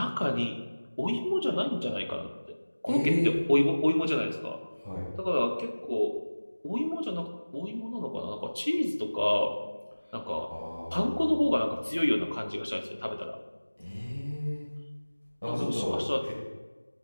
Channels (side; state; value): both; inverted; correlation -1.00